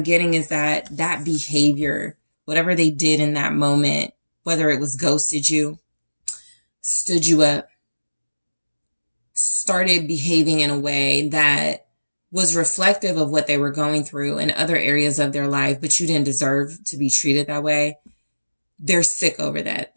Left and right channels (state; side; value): inverted; both; correlation -1.00